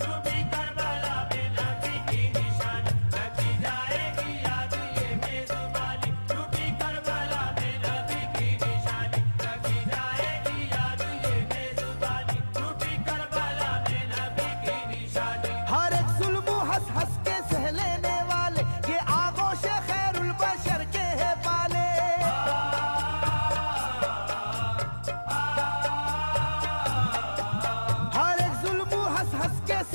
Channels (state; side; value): inverted; both; correlation -1.00